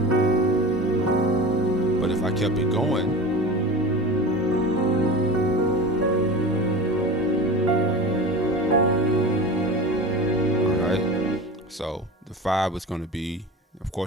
But if I kept it going, so the 5 is going to be, of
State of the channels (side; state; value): both; normal; correlation 0.32